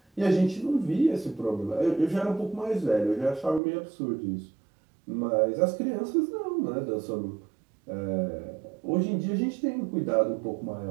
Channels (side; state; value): left; drops out; at 3.6 s